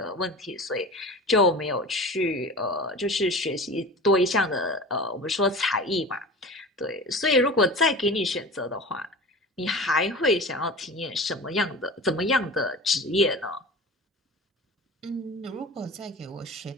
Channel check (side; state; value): both; normal; correlation 0.35